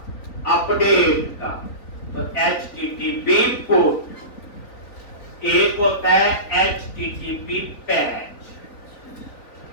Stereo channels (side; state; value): right; late; 3.9 ms